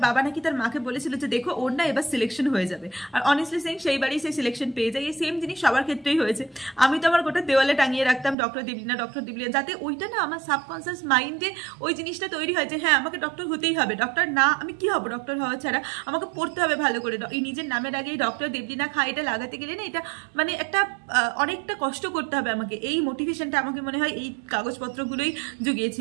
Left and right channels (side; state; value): left; drops out; at 8.3 s